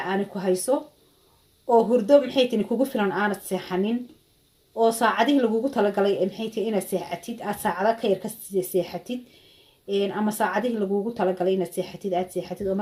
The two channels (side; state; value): both; identical; correlation 1.00